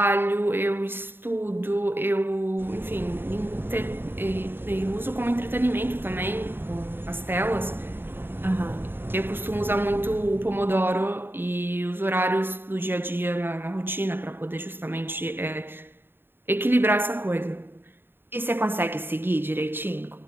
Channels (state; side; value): late; left; 0.10 ms